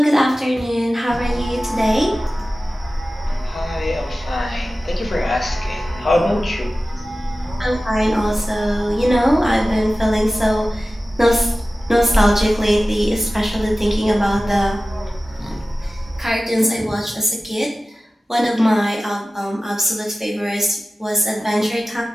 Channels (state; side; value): normal; both; correlation 0.96